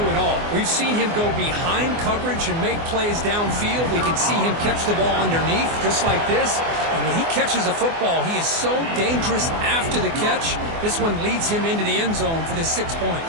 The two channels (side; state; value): left; late; 24 ms